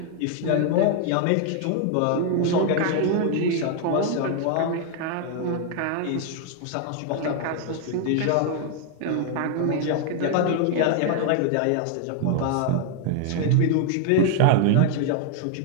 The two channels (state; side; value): different; both; correlation 0.00